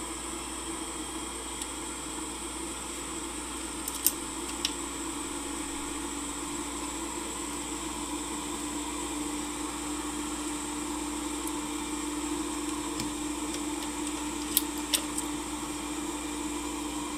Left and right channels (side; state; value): both; identical; correlation 1.00